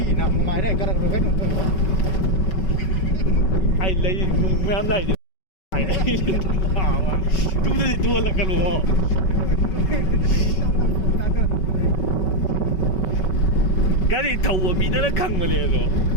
na mai dai karak kan ai lấy nung mấy anh lấy thì phải lấy thảo mà tu thì tu là cái lúa cái gì thầu ở bị nó khăng mà liền rồi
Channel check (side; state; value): right; late; 5.3 ms